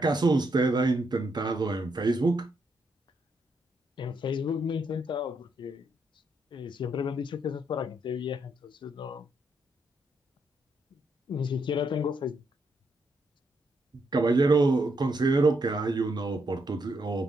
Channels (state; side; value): normal; both; correlation 0.78